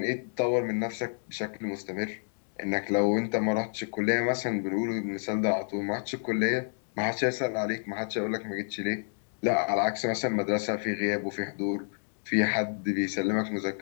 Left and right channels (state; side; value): silent; right; digital silence